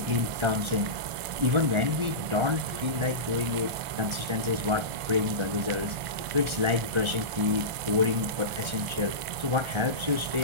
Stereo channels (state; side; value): late; left; 1.5 ms